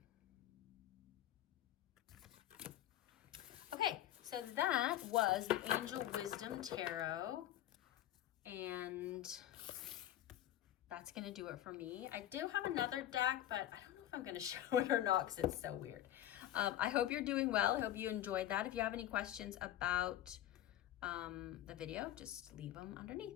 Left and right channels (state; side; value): quieter; right; 12.8 dB